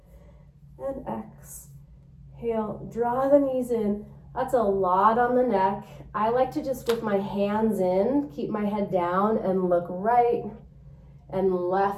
and exhale. Draw the knees in. That's a lot on the neck. I like to just, with my hands in, keep my head down and look right and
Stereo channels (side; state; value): both; identical; correlation 1.00